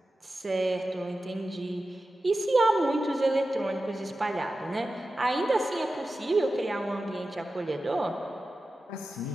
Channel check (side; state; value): both; normal; correlation 0.93